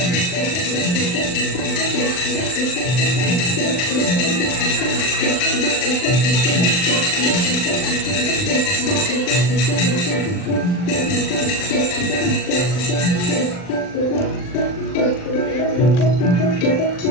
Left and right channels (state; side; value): late; right; 39 ms